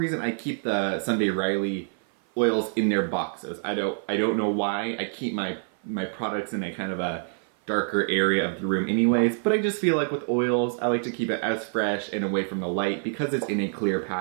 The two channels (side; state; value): left; silent; 56 dB below the other